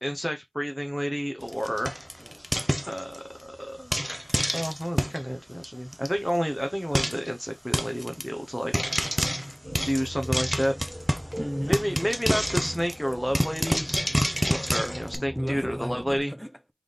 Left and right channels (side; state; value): both; identical; correlation 1.00